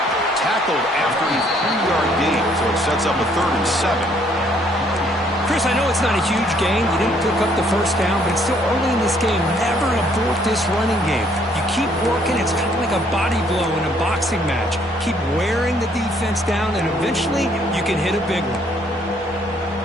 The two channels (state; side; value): normal; both; correlation 0.65